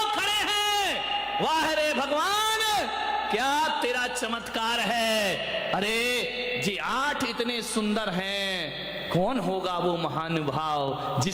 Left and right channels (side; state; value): both; identical; correlation 1.00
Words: खड़े हैं। वाह रे भगवान, क्या तेरा चमत्कार है? अरे जी 8 इतने सुंदर हैं, कौन होगा वो महानुभाव